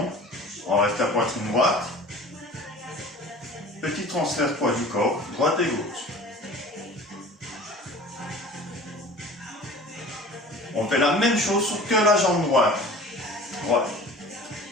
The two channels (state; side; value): normal; both; correlation 0.43